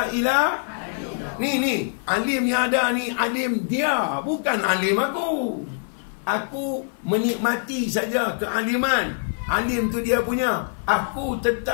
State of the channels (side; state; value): right; silent; 55 dB below the other